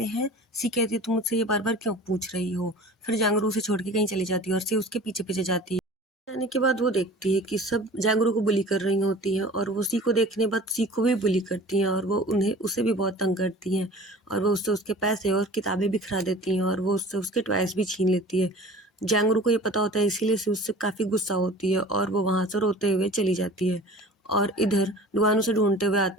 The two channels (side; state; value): both; normal; correlation 0.42